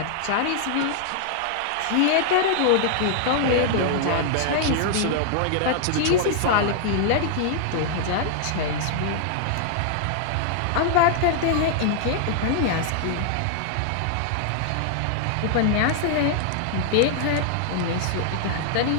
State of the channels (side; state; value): both; different; correlation -0.01